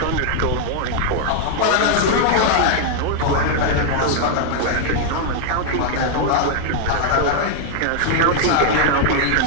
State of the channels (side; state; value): both; different; correlation 0.00